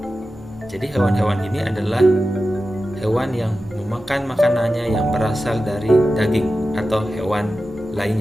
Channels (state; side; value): normal; both; correlation 0.93